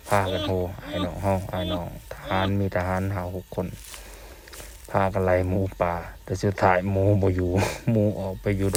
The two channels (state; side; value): identical; both; correlation 1.00